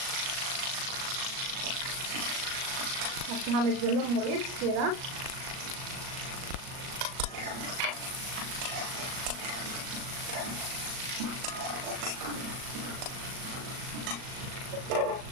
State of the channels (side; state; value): left; late; 38 ms